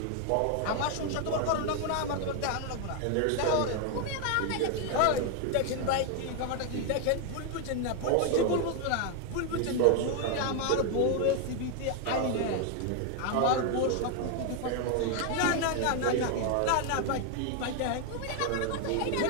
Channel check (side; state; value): both; different; correlation 0.00